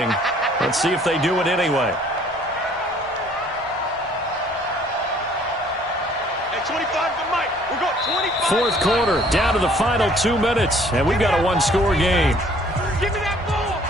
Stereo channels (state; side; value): normal; both; correlation 0.58